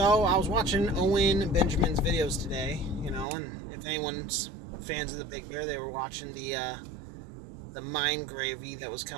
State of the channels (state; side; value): drops out; left; at 3.2 s